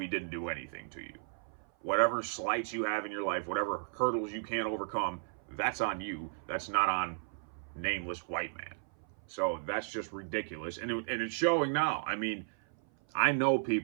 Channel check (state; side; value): silent; left; 55 dB below the other